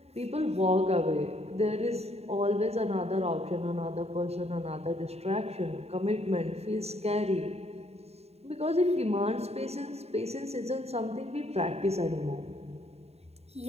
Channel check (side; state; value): left; late; 0.30 ms